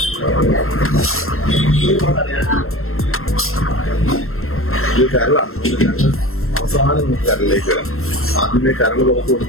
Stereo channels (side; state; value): right; late; 0.62 ms